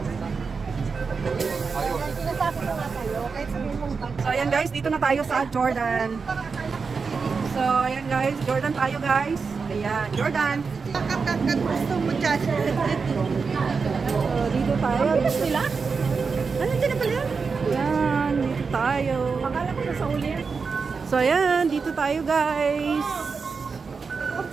So ayan guys, dito na tayo sa Jordan. So ayan guys, Jordan tayo guys. Ayan, Jordan. Gusto mo dyan. So dito tayo. Sila? Ano dyan na pala? Ayan, dito tayo. Akala ko na sa uli. So ayan, dito tayo guys.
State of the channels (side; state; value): left; quieter; 5.0 dB